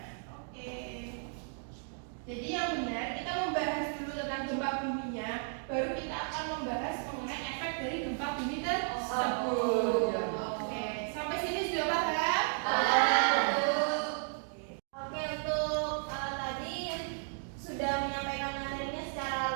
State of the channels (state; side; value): silent; left; 55 dB below the other